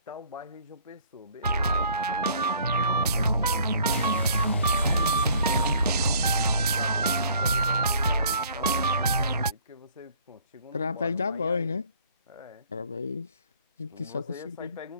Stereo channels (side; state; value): both; inverted; correlation -0.56